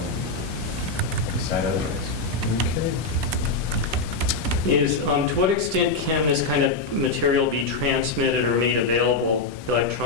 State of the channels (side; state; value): right; quieter; 3.6 dB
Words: decide otherwise. Okay. To what extent can this kind of material be transmitted or made available